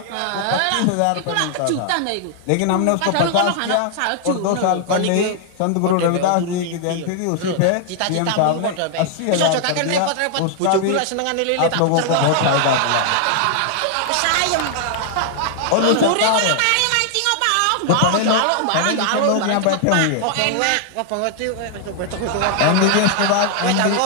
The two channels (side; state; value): both; different; correlation 0.00